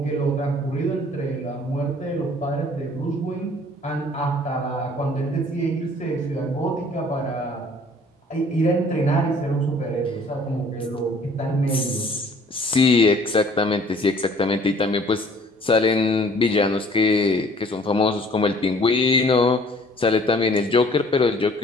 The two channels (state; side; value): normal; both; correlation 0.55